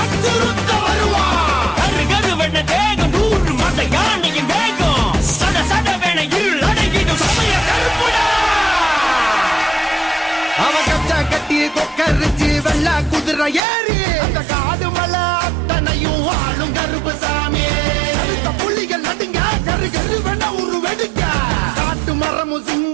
வெள்ள குதிரை ஏறி அந்த காடு மலை அத்தனையும் ஆளும் கருப்பு சாமி. புலிகள் நடுங்க கரு கரு வேணா ஒரு வெடுக்க. காட்டு மரமும்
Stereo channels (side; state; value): left; drops out; at 13.6 s